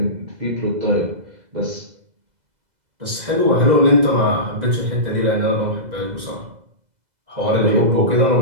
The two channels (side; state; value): left; late; 2.0 ms